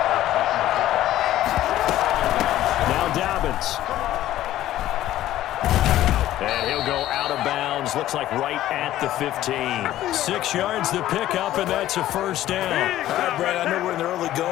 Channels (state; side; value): quieter; right; 13.8 dB